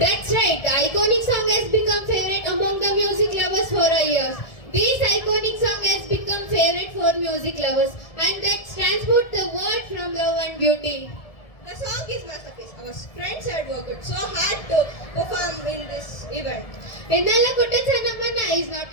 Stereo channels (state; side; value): late; right; 1.7 ms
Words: That's right. The iconic song has become favorite among the music lovers for a year. This iconic song has become favorite for music lovers and that transport the word from love and beauty. The song is masterpiece. Our friends had worked so hard to perform in this event. Ennala Kuttachanavana is not